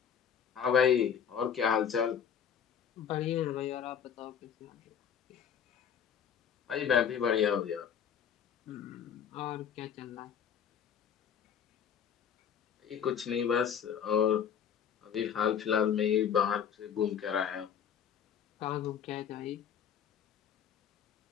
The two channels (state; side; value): quieter; right; 8.1 dB